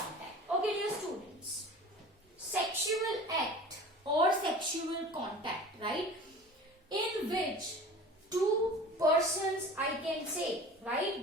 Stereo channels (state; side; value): normal; both; correlation 0.40